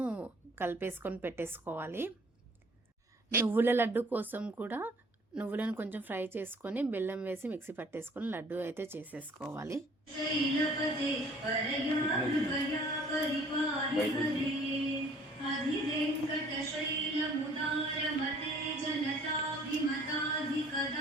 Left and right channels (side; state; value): both; normal; correlation 0.55